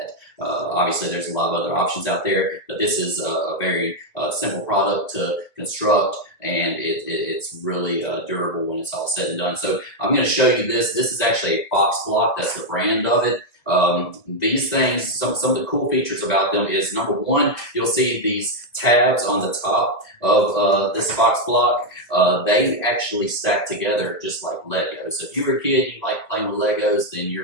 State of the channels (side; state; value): right; late; 2.0 ms